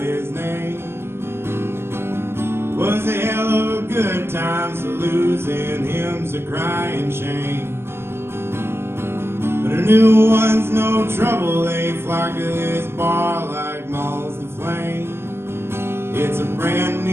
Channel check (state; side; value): late; left; 0.12 ms